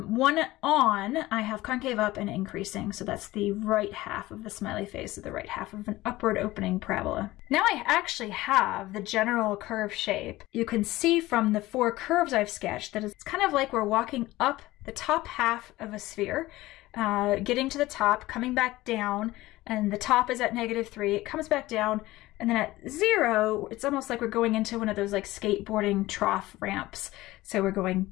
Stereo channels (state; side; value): quieter; right; 18.0 dB